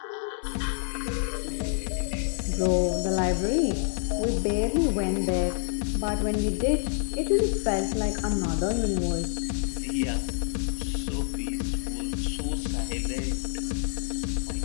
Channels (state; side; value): silent; right; digital silence